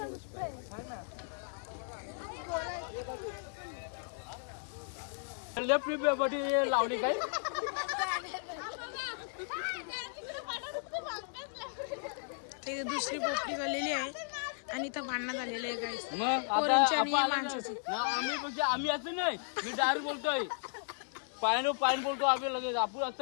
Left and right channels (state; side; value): silent; right; digital silence